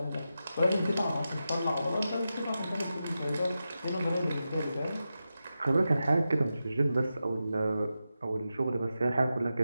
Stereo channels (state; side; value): inverted; both; correlation -0.90